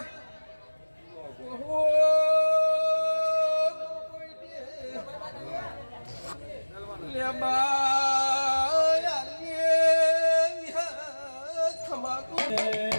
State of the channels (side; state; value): both; inverted; correlation -1.00